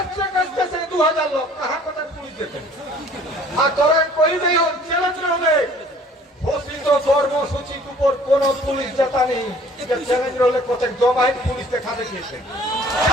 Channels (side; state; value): both; normal; correlation 0.54